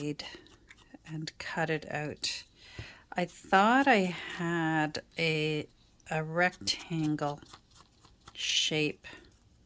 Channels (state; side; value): identical; both; correlation 1.00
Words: and cut it out. I thought I had a rectangle shape